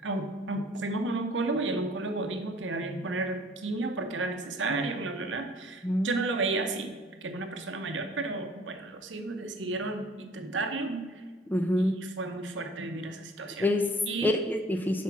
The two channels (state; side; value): normal; both; correlation 0.51